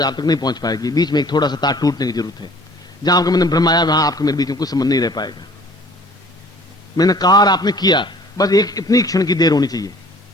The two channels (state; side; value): normal; both; correlation 0.52